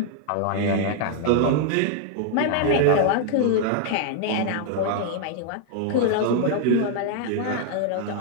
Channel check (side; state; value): both; different; correlation 0.00